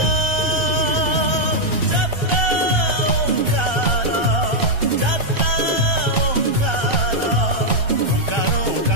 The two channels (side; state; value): left; late; 1.3 ms